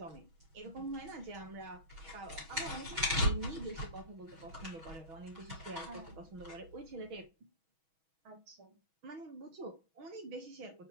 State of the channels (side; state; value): left; late; 6.2 ms